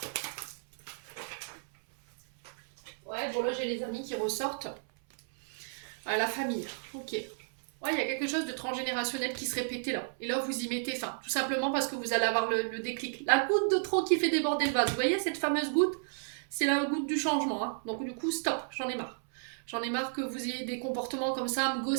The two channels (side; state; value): left; silent; 56 dB below the other